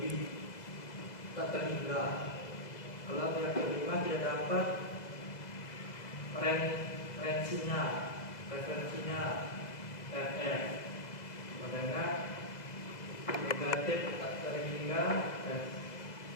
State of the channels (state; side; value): late; right; 2.0 ms